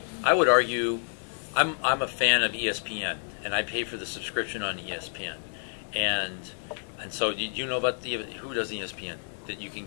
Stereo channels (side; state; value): right; silent; digital silence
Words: I would argue I'm a fan of ESPN, and I pay for the subscription on ESPN. And so do you know about who does ESPN? That you can